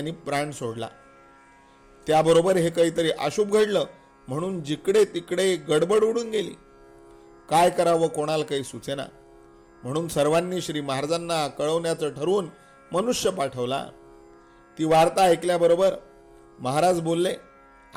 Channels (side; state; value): both; identical; correlation 1.00